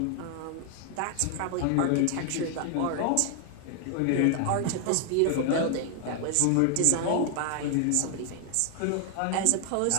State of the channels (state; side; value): different; both; correlation 0.00